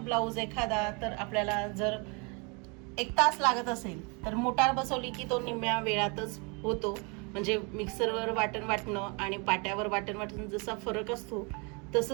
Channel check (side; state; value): left; quieter; 31.6 dB